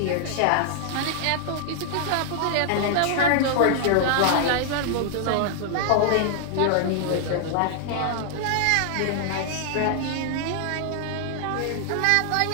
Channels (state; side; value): different; both; correlation 0.00